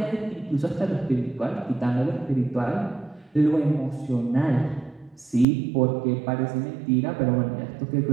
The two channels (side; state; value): left; drops out; at 5.5 s